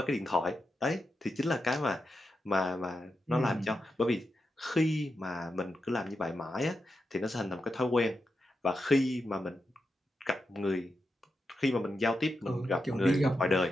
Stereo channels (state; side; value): normal; both; correlation 0.87